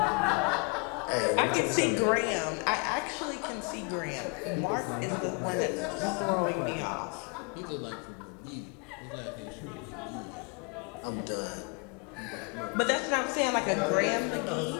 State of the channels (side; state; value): right; quieter; 34.2 dB